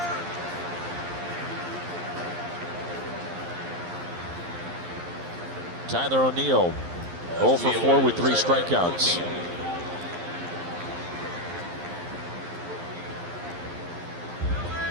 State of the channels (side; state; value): left; late; 11 ms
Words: Tyler O'Neill 0 for 4 with 3 strikeouts.